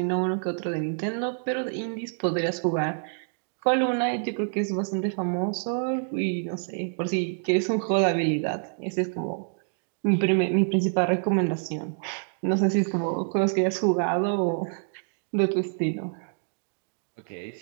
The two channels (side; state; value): left; silent; digital silence